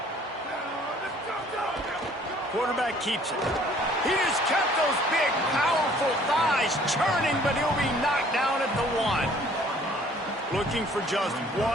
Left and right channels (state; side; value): normal; both; correlation 0.57